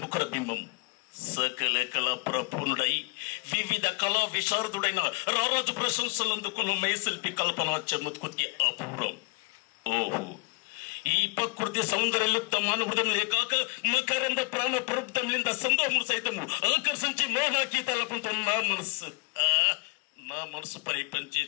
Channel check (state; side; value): quieter; right; 31.0 dB